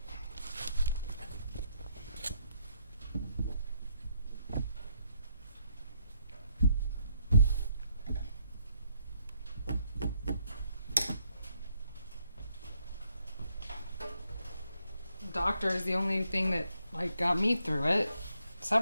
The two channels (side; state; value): both; inverted; correlation -0.74